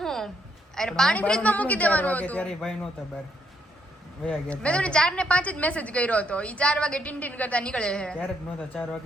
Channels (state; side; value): normal; both; correlation 0.74